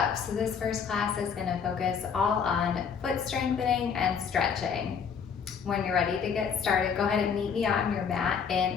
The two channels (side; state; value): right; quieter; 6.7 dB